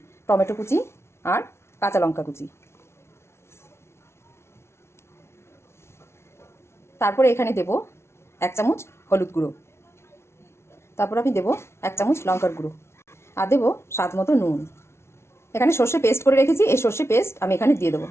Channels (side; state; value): right; late; 0.13 ms